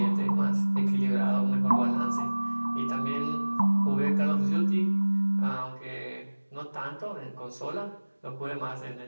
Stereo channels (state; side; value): inverted; both; correlation -1.00